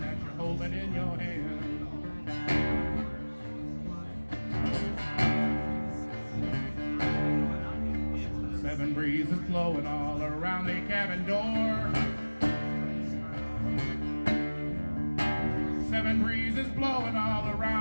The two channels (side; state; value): both; inverted; correlation -1.00